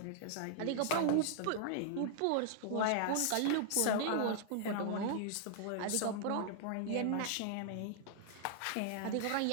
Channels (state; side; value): different; both; correlation -0.01